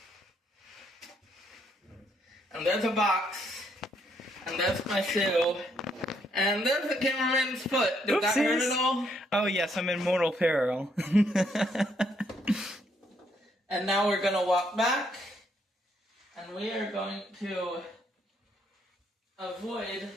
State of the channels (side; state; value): both; normal; correlation 0.72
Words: And there's a box. And there's my shoe. And there's the cameraman's foot. Did that hurt at all? Oh yes, I'm in mortal peril. And now we're going to walk back. And we are going to avoid